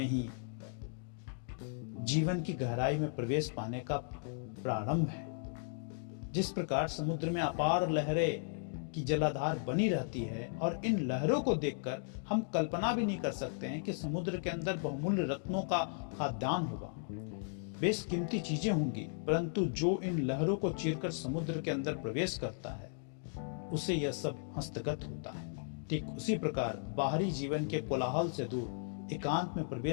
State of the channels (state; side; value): silent; right; digital silence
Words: ही जीवन की गहराई में प्रवेश पाने का प्रारंभ है। जिस प्रकार समुद्र में अपार लहरें की जलाधार बनी रहती है और इन लहरों को देखकर हम कल्पना भी नहीं कर सकते हैं कि समुद्र के अंदर बहुमूल्य रत्नों का खाद्यान्न होगा, बेशकीमती चीजें होंगी, परंतु जो इन लहरों को चीरकर समुद्र के अंदर प्रवेश करता है उसे यह सब हस्तगत होता है। ठीक उसी प्रकार बाहरी जीवन के कोलाहल से दूर एकांत में